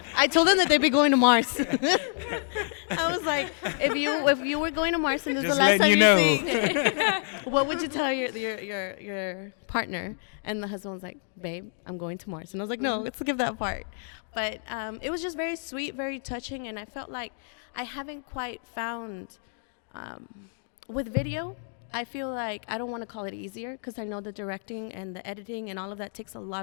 I told them that they'd be going to Mars. I was like, if you were going to Mars and this is Just the last time letting you see, what would you tell your partner? And the husband was like, "Babe, I'm going to Mars." And I was like, "No, let's skip that part." But it was just very sweet, very touching, and I felt like I haven't quite found with video. I feel like I don't want to call it easier because I know the directing and the editing and all of that takes a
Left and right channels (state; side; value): silent; right; 59 dB below the other